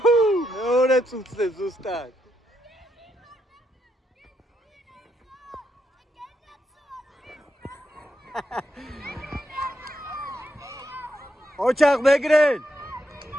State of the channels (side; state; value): both; normal; correlation 0.80